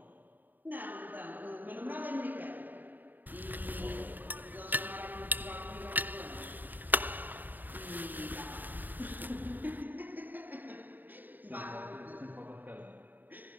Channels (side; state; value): left; late; 0.088 ms